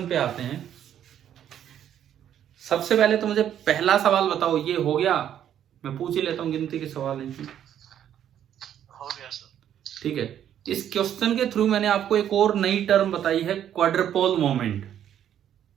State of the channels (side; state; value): left; quieter; 10.2 dB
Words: पे आते हैं। सबसे पहले तो मुझे पहला सवाल बताओ, ये हो गया? मैं पूछ ही लेता हूँ, गिनती के सवाल हैं। हो गया सर। ठीक है, इस क्वेश्चन के थ्रू मैंने आपको एक और नई टर्म बताई है, क्वाड्रपोल मोमेंट।